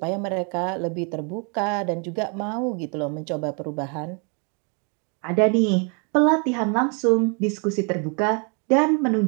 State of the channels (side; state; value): left; quieter; 36.3 dB